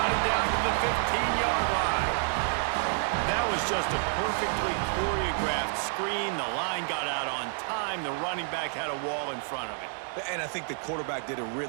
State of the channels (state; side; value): silent; left; 58 dB below the other